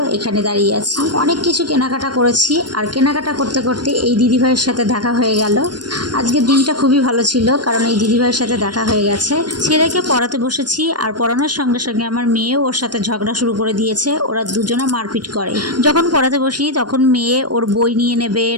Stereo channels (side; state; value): left; late; 0.70 ms